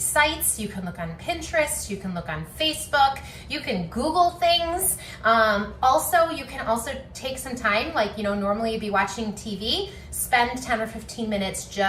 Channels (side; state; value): both; identical; correlation 1.00